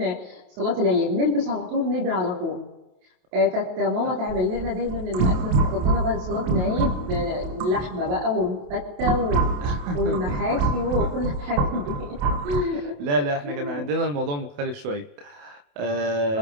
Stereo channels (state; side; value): late; left; 28 ms